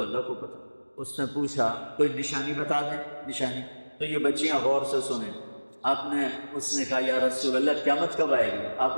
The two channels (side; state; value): both; inverted; correlation -1.00